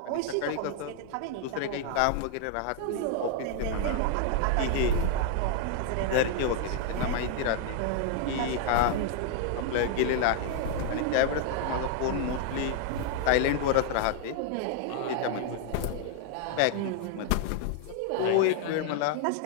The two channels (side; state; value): both; different; correlation 0.00